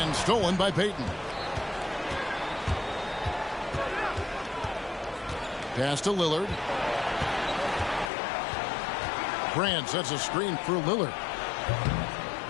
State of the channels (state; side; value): drops out; right; at 8.1 s